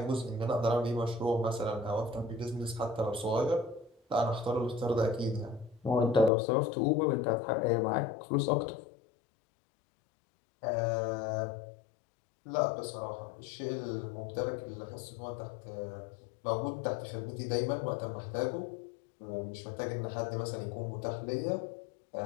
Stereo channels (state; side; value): drops out; right; at 6.3 s